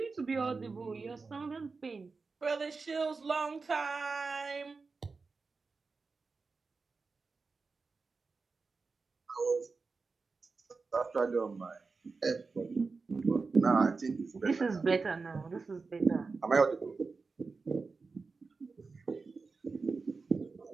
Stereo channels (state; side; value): quieter; left; 4.3 dB